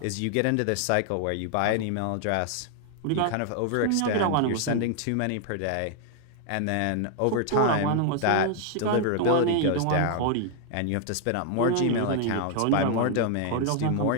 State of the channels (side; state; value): both; different; correlation 0.00